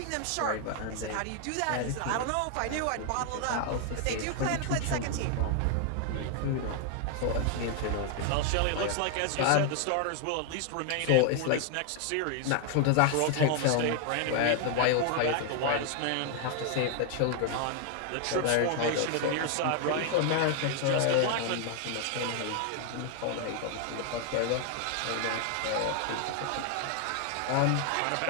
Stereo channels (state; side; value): different; both; correlation 0.00